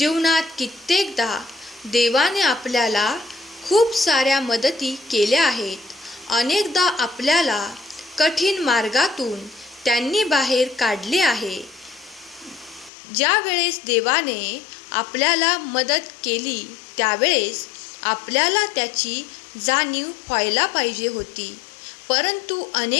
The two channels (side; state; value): right; drops out; at 12.9 s